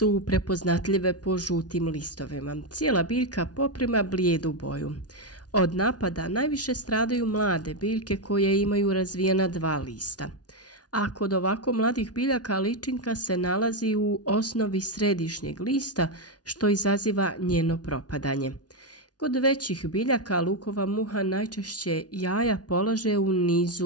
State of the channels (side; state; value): right; late; 0.69 ms